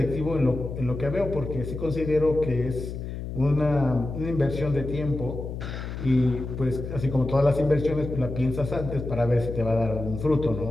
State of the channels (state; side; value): noise; left; hum, 7 dB below the sound